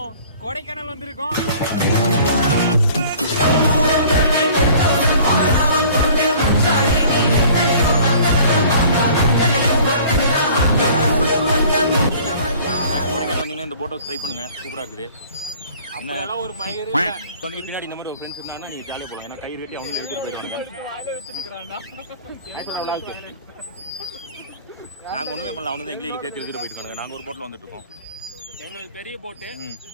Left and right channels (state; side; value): inverted; both; correlation -0.49